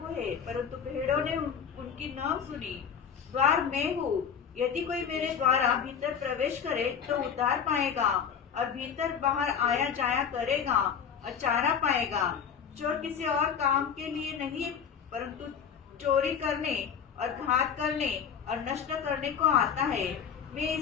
है, परंतु भेड़ों ने उनकी न सुनी। द्वार मैं हूँ, यदि कोई मेरे द्वारा भीतर प्रवेश करे तो उद्धार पाएगा और भीतर बाहर आया जाया करेगा और चारा पाएगा। चोर किसी और काम के लिए नहीं, परंतु चोरी करने और घात करने और नष्ट करने को आता है। मैं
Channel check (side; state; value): right; quieter; 7.4 dB